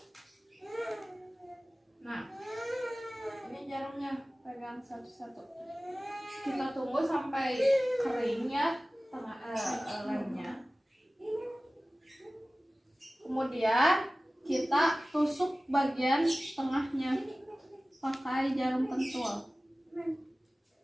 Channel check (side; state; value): both; normal; correlation 0.97